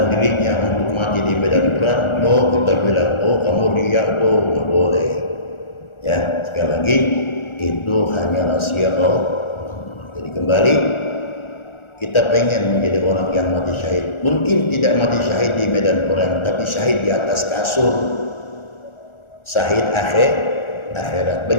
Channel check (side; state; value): right; late; 1.4 ms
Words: dirinya untuk mati di medan perang. Oh, kita bilang, oh kamu riak tuh, nggak boleh. Ya, sekali lagi itu hanya rahasia Allah. Jadi kembali, kita pengen menjadi orang yang mati syahid. Mungkin tidak mati syahid di medan perang, tapi syahid di atas kasur. Syahid akhirat.